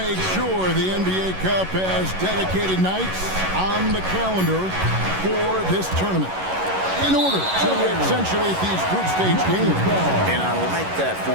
sure the NBA Cup has dedicated nights on the calendar for this tournament in order to accentuate these group stage games. And I like that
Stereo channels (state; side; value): late; left; 11 ms